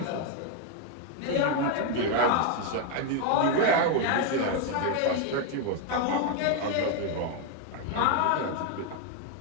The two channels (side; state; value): both; different; correlation 0.01